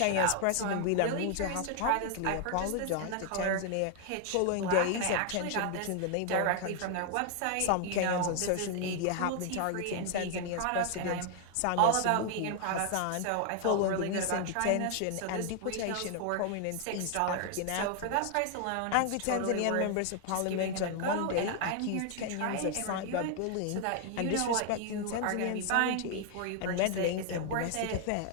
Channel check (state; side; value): different; both; correlation 0.00